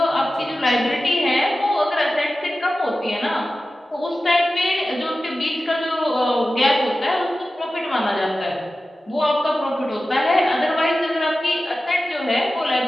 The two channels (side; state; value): both; normal; correlation 0.94